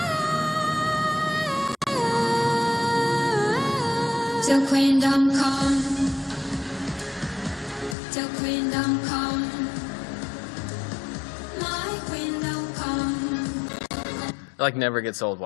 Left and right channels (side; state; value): right; drops out; at 8.0 s